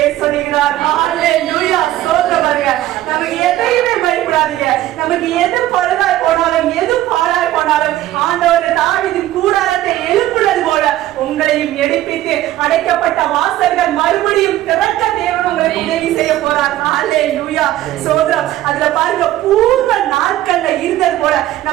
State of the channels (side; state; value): left; quieter; 14.4 dB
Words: சொல்லுகிறார். ஹல்லேலூயா. ஸ்தோத்திரம். பாருங்க, நமக்கு எதையுமே பயப்படாதீங்க. நமக்கு எது பழுதாய் போனாலும் எது பாழாய் போனாலும் ஆண்டவர் தாவீதின் கூடாரத்தை எழுப்புனது போல உங்களையும் எடுப்பித்து அடைக்கப்பட்ட வாசல்கள் மறுபடியும் திறக்க தேவன் உங்களுக்கு உதவி செய்ய போறார். ஹல்லேலூயா. ஸ்தோத்திரம். அதுல பாருங்க, பூர்வ நாட்கள்ல இருந்தது போல